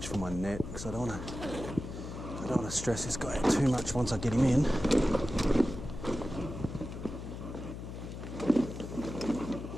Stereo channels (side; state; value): left; noise; hum, 9 dB below the sound